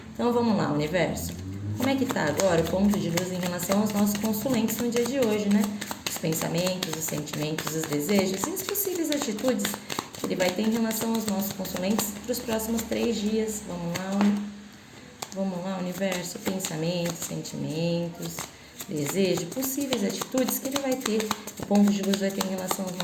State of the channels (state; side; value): identical; both; correlation 1.00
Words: Então, vamos lá, universo. Como é que tá agora o ponto de luz em relação aos nossos consulentes no dia de hoje, né? Os pensamentos, os sentimentos, os desejos e as possíveis atitudes que ele vai ter em relação aos nossos consulentes para os próximos 3 dias. Vamos lá, universo. Pensamentos, sentimentos, desejo, possíveis atitudes que ele vai ter, o ponto de luz vai ter em relação aos